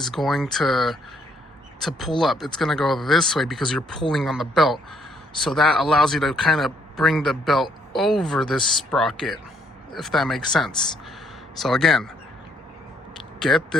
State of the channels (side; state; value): both; normal; correlation 0.69